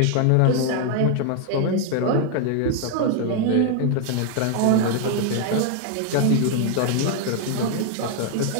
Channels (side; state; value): both; different; correlation 0.00